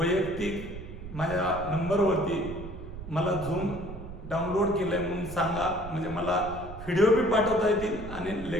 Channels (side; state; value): right; noise; rumble, 12 dB below the sound